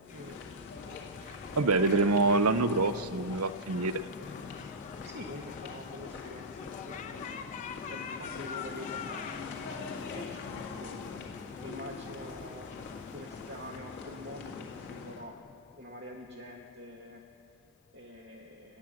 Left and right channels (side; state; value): both; normal; correlation -0.10